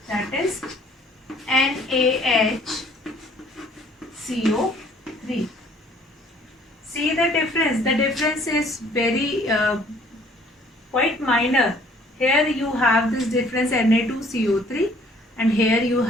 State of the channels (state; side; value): normal; both; correlation 0.58